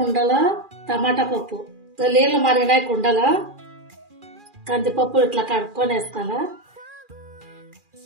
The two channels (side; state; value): left; late; 2.4 ms